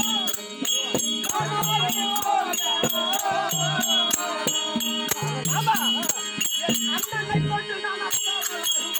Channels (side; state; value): both; identical; correlation 1.00